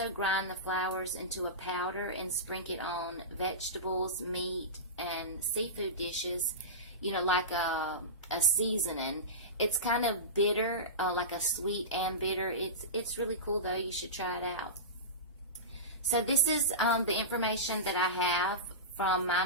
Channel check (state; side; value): normal; both; correlation -0.20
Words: grind the flowers into a powder and sprinkle it on vegetables, meat, and seafood dishes, like a seasoning, It's kind of bitter, like a sweet and bitter. It's really cool though. You should try it out. So this is the information that I have from my